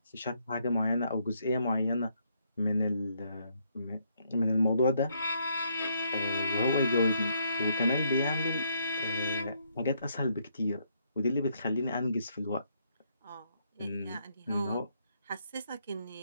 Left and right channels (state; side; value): inverted; both; correlation -0.73